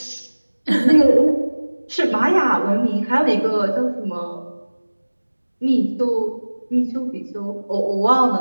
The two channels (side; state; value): both; inverted; correlation -1.00